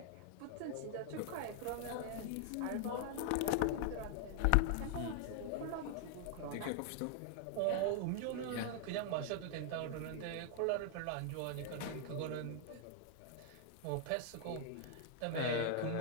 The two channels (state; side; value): different; both; correlation 0.00